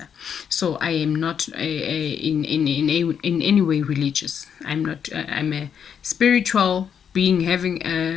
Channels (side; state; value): right; quieter; 7.8 dB